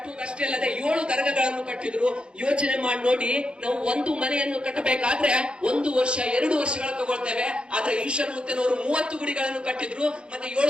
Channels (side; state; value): left; late; 0.055 ms